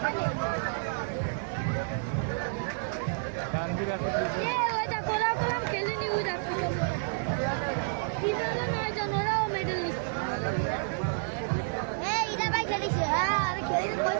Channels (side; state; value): left; silent; 58 dB below the other